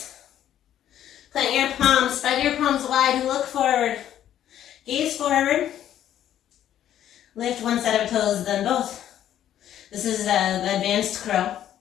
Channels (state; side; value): quieter; right; 11.1 dB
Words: Plant your palms, spread your palms wide and look forward. Gaze forward. Lift one set of toes, then both. This is the advanced crow.